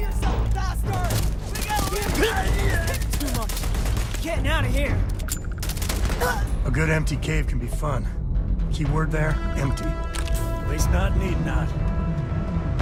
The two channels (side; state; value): both; identical; correlation 1.00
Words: bastard! We gotta leave! Too much. Getting out of here. A good empty cave can be fun. Keyword there, empty. At least not need not.